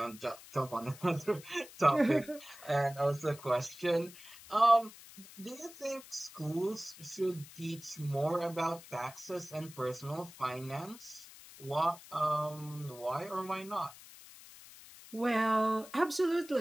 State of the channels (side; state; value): left; noise; hiss, 18 dB below the sound